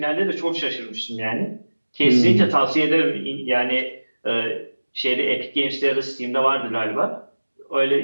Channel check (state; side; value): inverted; both; correlation -1.00